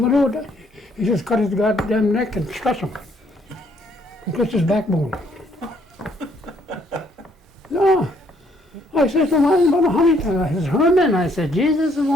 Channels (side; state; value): both; normal; correlation 0.67